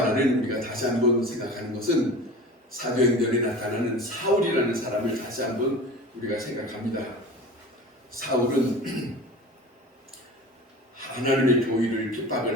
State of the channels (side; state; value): both; normal; correlation 0.36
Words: 우리가 다시 한번 생각하는 것은 사도행전에 나타나는 사울이라는 사람을 다시 한번 우리가 생각합니다. 사울은 하나님의 교회를